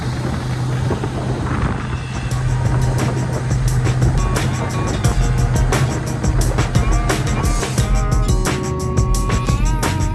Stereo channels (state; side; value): identical; both; correlation 1.00